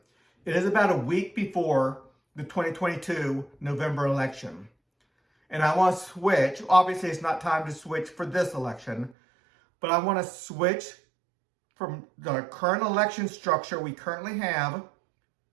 It is about a week before the 2022 November election. And I want to switch. Obviously, it's not time to switch for this election, but I want to switch from the current election structure we currently have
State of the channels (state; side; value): drops out; left; at 9.2 s